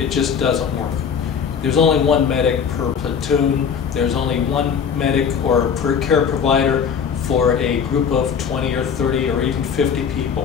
just doesn't work. There's only one medic per platoon. There's only one medic or per care provider for a group of 20 or 30 or even 50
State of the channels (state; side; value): quieter; right; 7.0 dB